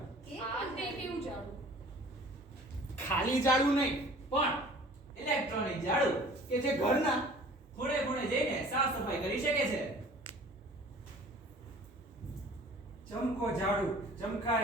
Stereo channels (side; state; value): both; normal; correlation 0.48